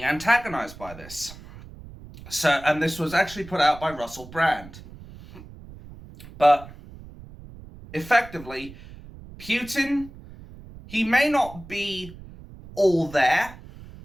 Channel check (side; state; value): right; noise; rumble, 17 dB below the sound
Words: antagonized by this. And this was actually put out by Russell Brand. But effectively, Putin, he may not be all there,